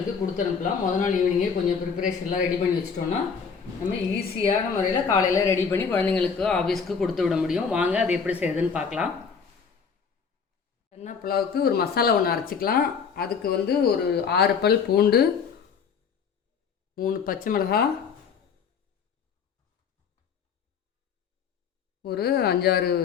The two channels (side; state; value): right; quieter; 6.1 dB